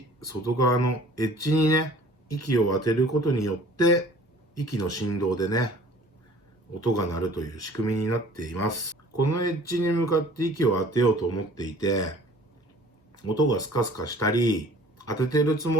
外側のエッジにね、息を当てることによって、息の振動でね、音が鳴るという仕組みになっています。このエッジに向かって息を当てようと思っていて、音がスカスカしたり、当ててるつ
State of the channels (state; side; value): normal; both; correlation 0.50